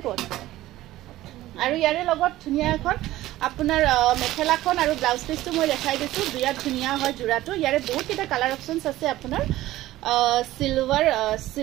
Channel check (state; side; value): quieter; left; 15.8 dB